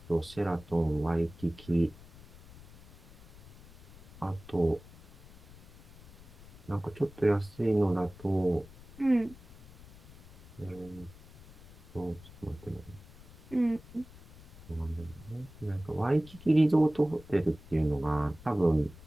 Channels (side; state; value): left; noise; rumble, 20 dB below the sound